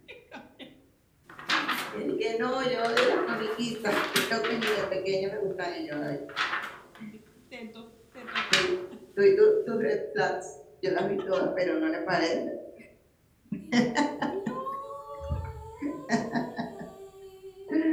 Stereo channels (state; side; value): identical; both; correlation 1.00